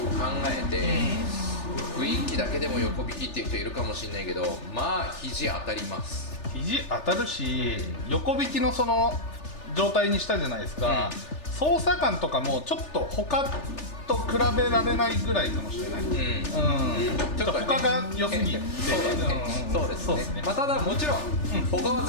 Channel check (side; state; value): right; late; 3.4 ms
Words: も考えて、雰囲気だけでも横引きっていう人いるかもしれないけど、まあ肘当たります。肘当たるし、横引きのその状態にしたじゃないですか、操作感とかもちょっと他と比べられないぐらいかもしれない、ちょっと他が良すぎて、そうですね、まあ、ただもちろん、他は